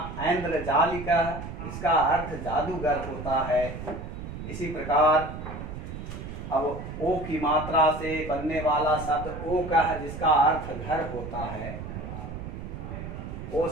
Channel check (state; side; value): noise; right; rumble, 8 dB below the sound